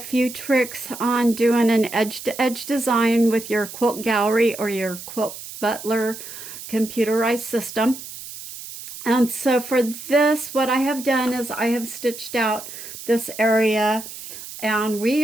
tricks on doing an edge-to-edge design with your Quilt Gallery or your Quilt Butler computerized system. And so for this, what I have done is I have stitched out this area, and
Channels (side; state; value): right; noise; hiss, 12 dB below the sound